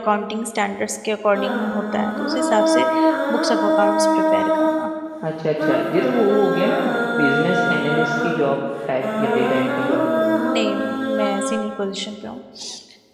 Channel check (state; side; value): identical; both; correlation 1.00